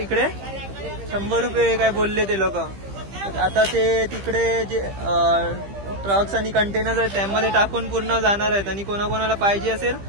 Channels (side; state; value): left; late; 15 ms